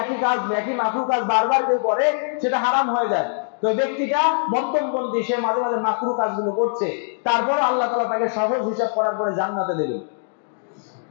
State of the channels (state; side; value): silent; right; digital silence